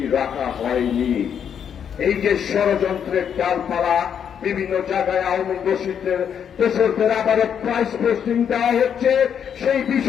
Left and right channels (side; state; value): right; quieter; 8.1 dB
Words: রাখা হয়নি। এই যে ষড়যন্ত্রের ডালপালা, বিভিন্ন জায়গায় আওয়ামী দোষরদের আবারও প্রাইস পোস্টিং দেওয়া হচ্ছে, সেই